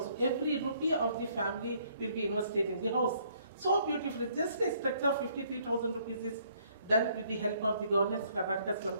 every rupee of the family will be invested in the house. So beautifully, just a structure of 53,000 rupees is done with the help of the government's Karnataka Slum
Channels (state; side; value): inverted; both; correlation -0.65